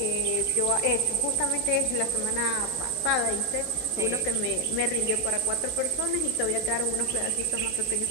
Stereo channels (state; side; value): noise; right; hiss, 15 dB below the sound